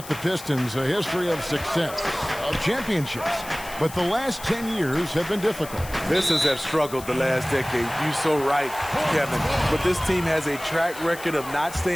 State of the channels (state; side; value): noise; left; hiss, 15 dB below the sound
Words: the Pistons, a history of success, of championships. But the last 10 years have been difficult. Pistons have struggled the last decade. You're so right, Kevin. But this team has a track record of not